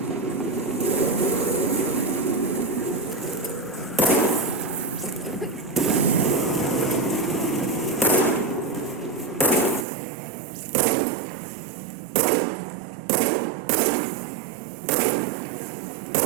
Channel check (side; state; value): left; drops out; at 9.9 s